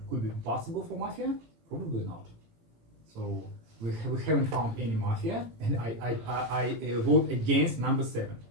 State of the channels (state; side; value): late; left; 18 ms